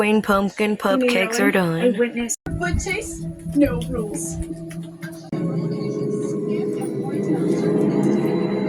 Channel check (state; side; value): identical; both; correlation 1.00